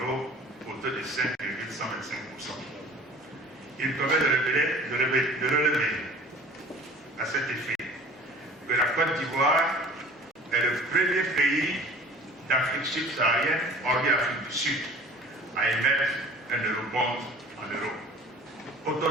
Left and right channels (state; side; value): normal; both; correlation 0.46